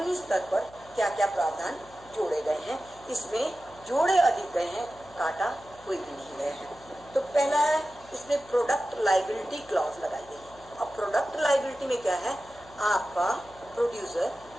स्तर पर क्या क्या प्रावधान जोड़े गए हैं। इसमें जोड़े अधिक गए हैं, काटा कोई भी नहीं गए हैं। तो पहला है इसमें प्रोडक्ट लायबिलिटी क्लॉज लगाई गई है। अब प्रोडक्ट लायबिलिटी में क्या है, आपका प्रोड्यूसर,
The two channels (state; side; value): noise; left; hum, 23 dB below the sound